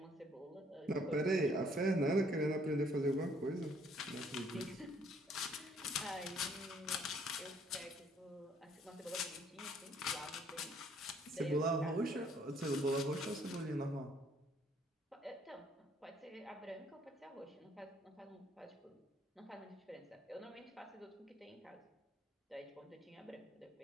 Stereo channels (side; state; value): both; normal; correlation 0.63